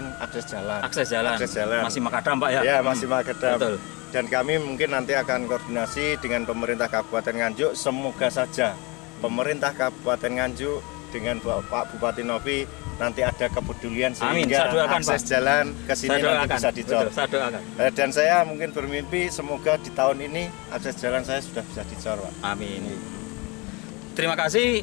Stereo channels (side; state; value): right; quieter; 27.1 dB